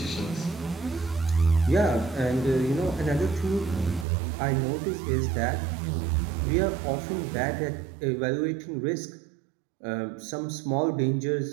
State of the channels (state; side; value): drops out; left; at 4.0 s